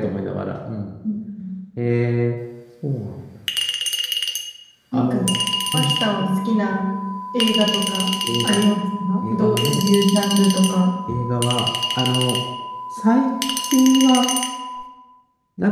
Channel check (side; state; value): both; identical; correlation 1.00